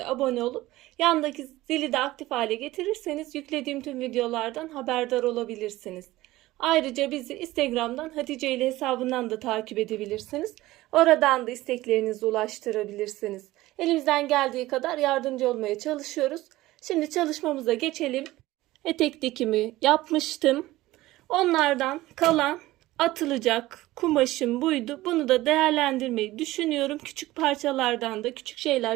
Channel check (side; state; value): left; quieter; 17.5 dB